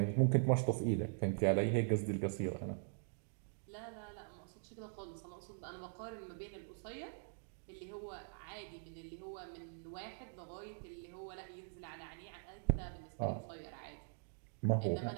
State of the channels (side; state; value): left; silent; digital silence